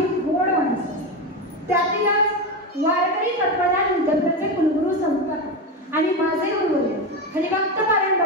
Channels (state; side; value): normal; both; correlation 0.16